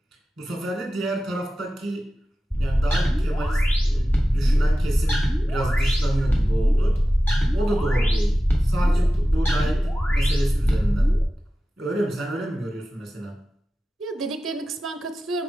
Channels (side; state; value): both; normal; correlation 0.95